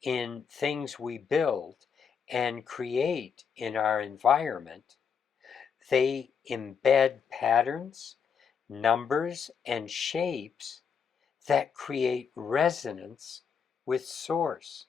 in things we build and create in our environment, they embed patterns, numbers, and shapes that create resonance with Source,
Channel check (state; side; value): quieter; right; 6.6 dB